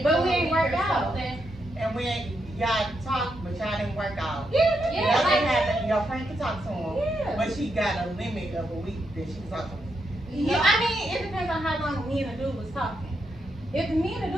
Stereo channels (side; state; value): both; normal; correlation 0.82